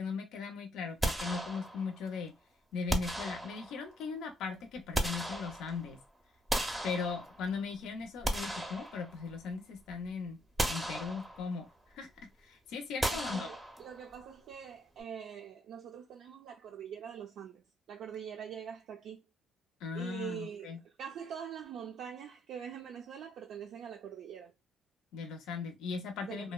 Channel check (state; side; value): normal; both; correlation 0.74